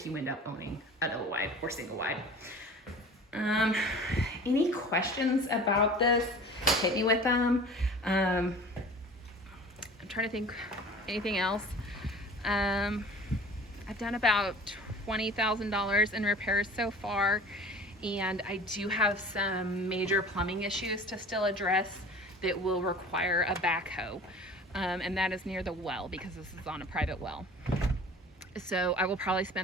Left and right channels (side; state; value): both; normal; correlation 0.42